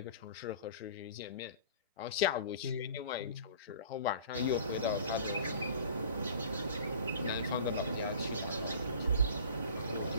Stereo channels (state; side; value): inverted; both; correlation -0.44